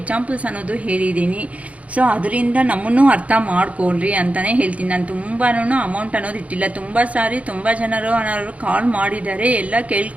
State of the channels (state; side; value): late; left; 0.066 ms